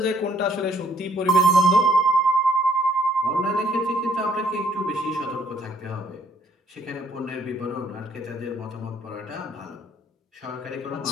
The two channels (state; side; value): normal; both; correlation 0.66